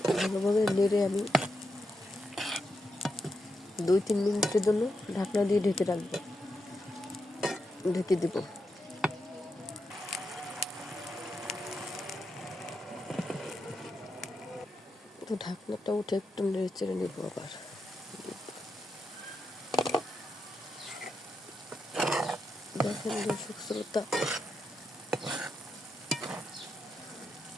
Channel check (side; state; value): both; normal; correlation 0.85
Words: ভালোভাবে নেড়ে আমি 2-3 মিনিটের জন্য ঢাকনা দিয়ে ঢেকে রাখবো, ঢেকে দেব। তো ঢাকনাটা উঠে একটু নেড়ে চেড়ে নেব আবার। দেখেন দর্শক শ্রোতা,